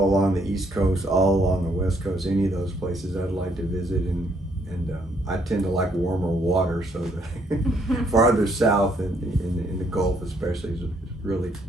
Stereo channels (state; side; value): normal; both; correlation 0.69